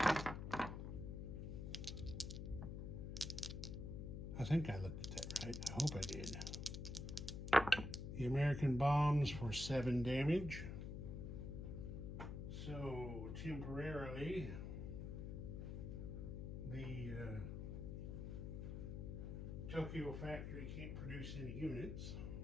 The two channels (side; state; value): left; noise; hum, 5 dB below the sound